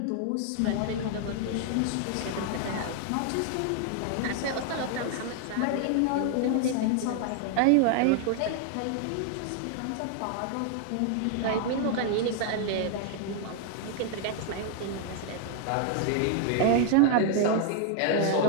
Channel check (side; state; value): both; different; correlation 0.00